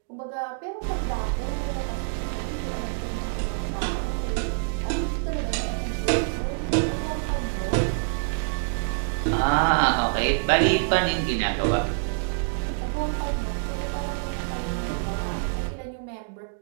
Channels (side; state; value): left; silent; digital silence